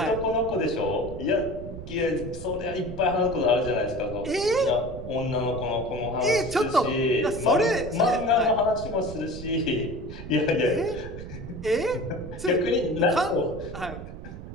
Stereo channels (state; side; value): noise; right; rumble, 11 dB below the sound